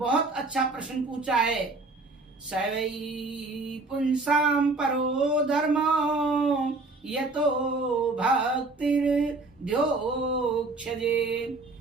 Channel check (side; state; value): left; quieter; 3.4 dB